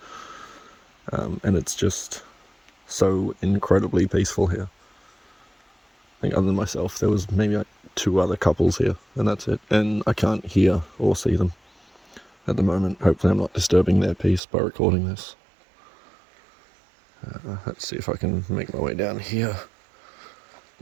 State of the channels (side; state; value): left; drops out; at 14.4 s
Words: And it's just so incredibly peaceful here. I think other than myself, there was maybe like 2 other couples here, and that's it. And I can't hear or see them at the moment. Hopefully I'm not disturbing their peace by recording this. Let's see if I can make my way down here